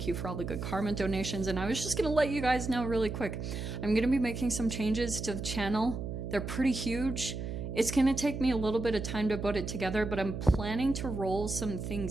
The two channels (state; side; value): noise; right; hum, 5 dB below the sound